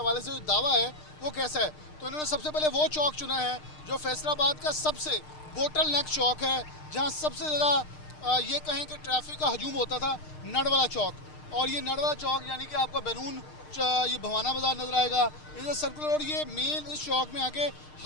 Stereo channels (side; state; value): right; late; 6.6 ms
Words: से जो दावा है वो कैसा है। तो इन्होंने सबसे पहले वो चौक चुना है जो फैसलाबाद का सबसे बोटल नेक चौक है, जहाँ सबसे ज़्यादा ये कहें कि ट्रैफिक का हजूम होता था, नडवाला चौक। और ये नडवाला चौक यानी कि आपका बैरून ये भवाना बाज़ार नज़र आएगा, इधर सर्कुलर। और ये मेन इस चौक में आके